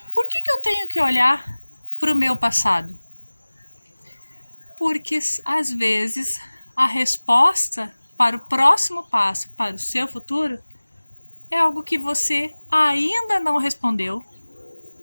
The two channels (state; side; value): inverted; both; correlation -1.00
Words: por que eu tenho que olhar para o meu passado? Porque às vezes a resposta para o próximo passo, para o seu futuro, é algo que você ainda não respondeu